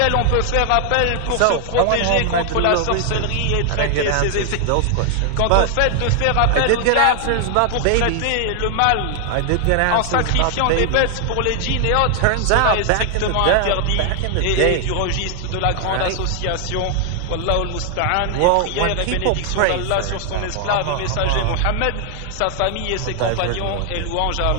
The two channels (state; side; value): different; both; correlation 0.00